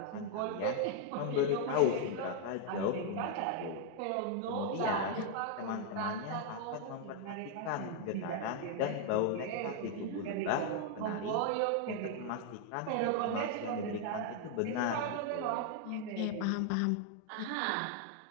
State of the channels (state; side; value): different; both; correlation 0.00